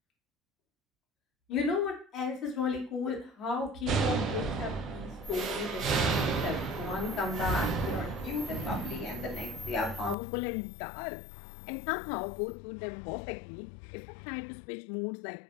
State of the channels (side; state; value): right; drops out; at 10.2 s